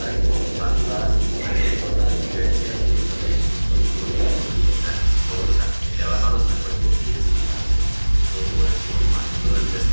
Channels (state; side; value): inverted; both; correlation -1.00